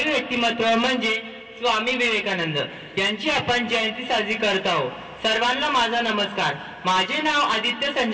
व्यक्तिमत्व म्हणजे स्वामी विवेकानंद यांची आपण जयंती साजरी करत आहोत. सर्वांना माझा नमस्कार. माझे नाव आदित्य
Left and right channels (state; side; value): identical; both; correlation 1.00